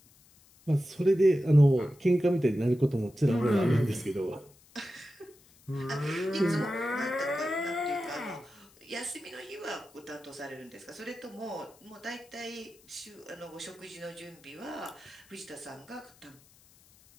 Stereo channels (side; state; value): left; noise; hiss, 28 dB below the sound